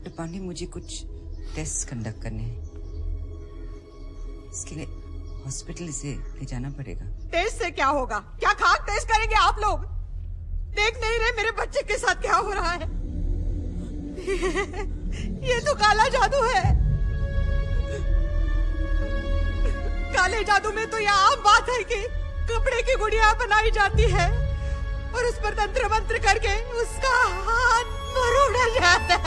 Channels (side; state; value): both; identical; correlation 1.00